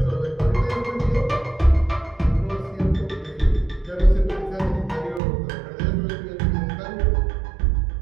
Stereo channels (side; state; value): left; drops out; at 5.2 s